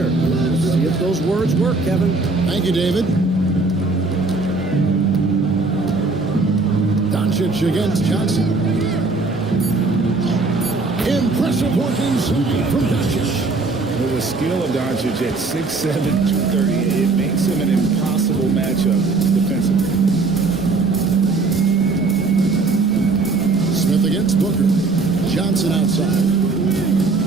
See if those words work, Kevin. Thank you, David. Doncic against Johnson. Impressive working from Doncic. With the skill of Doncic at 6'7", 230, it makes him an impossible matchup defensively. Smith against Booker. Johnson outside.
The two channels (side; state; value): left; quieter; 3.7 dB